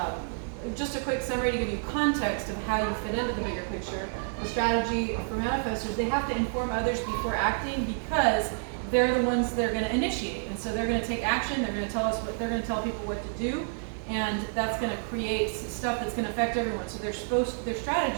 just a quick summary to give you context of how you fit into the bigger picture. The strategy for manifestors, they have to inform others before acting because they're the ones that are going to initiate. And so they're going to take action, they're going to tell people what to do, and that's going to create stuff that's going to affect everyone. So their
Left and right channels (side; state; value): left; silent; 58 dB below the other